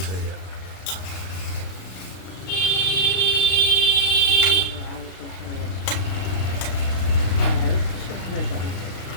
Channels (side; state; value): right; late; 32 ms